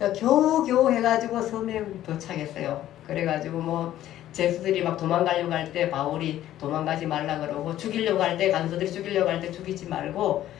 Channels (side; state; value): right; quieter; 12.9 dB